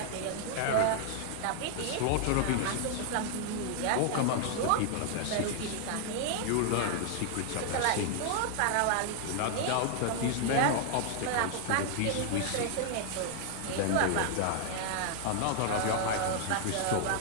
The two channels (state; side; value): different; both; correlation 0.00